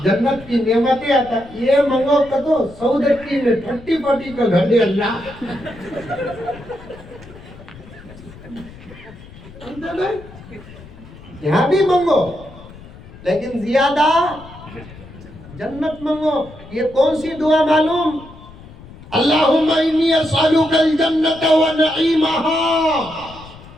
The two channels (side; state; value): left; noise; rumble, 19 dB below the sound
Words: جنت کی نعمتیں عطا، یہ منگو کدو سعودی میں 30-40 کا گھر دے اللہ، یہاں بھی منگو لیکن زیادہ جنت منگو۔ یہ کون سی دعا معلوم؟ اللہم انی اسألک الجنت ونعیمہا۔